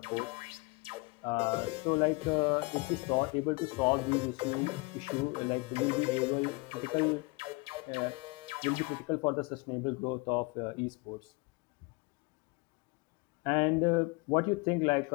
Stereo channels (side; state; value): right; quieter; 27.0 dB